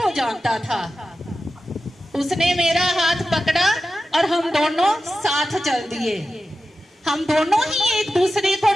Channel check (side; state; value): both; normal; correlation 0.93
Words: जानता था। उसने मेरा हाथ पकड़ा और हम दोनों साथ चल दिए। हम दोनों ही एक दूसरे